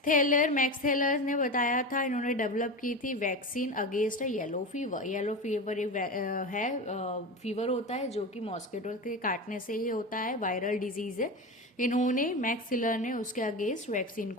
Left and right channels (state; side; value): normal; both; correlation 0.23